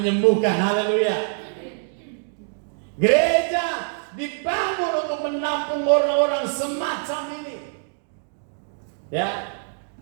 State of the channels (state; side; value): silent; left; digital silence